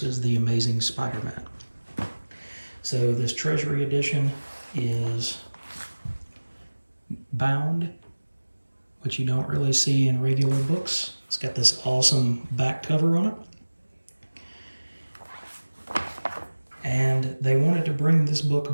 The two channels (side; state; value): both; inverted; correlation -1.00